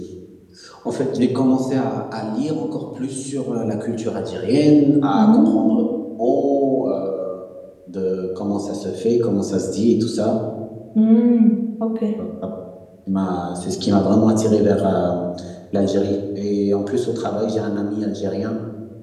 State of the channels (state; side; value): identical; both; correlation 1.00